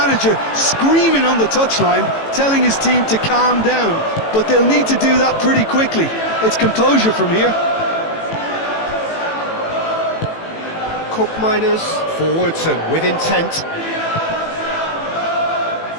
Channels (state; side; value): late; right; 18 ms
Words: screaming on the touchline, telling his team to calm down. But they'll need to do that pretty quickly. It's composure from here. Cup miners forwards and with intent.